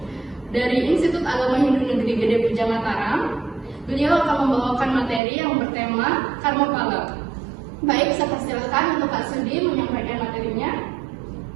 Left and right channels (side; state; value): left; drops out; at 5.2 s